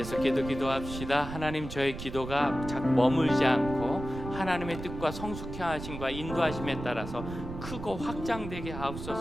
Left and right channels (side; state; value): right; noise; rumble, 9 dB below the sound